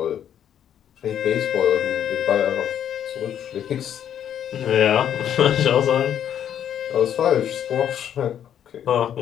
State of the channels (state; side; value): quieter; right; 9.7 dB